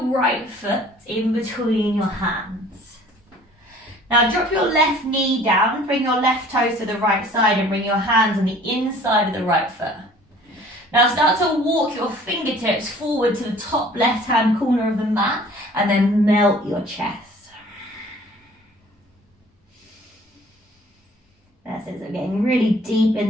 right foot in between your hands. Now drop your left knee down, bring your left toes to the right side and bring your hands on the inside of the right foot. Now start to walk your fingertips forward to the top left-hand corner of the mat and then melt your chest. That's it, so getting really deep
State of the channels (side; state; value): both; normal; correlation 0.51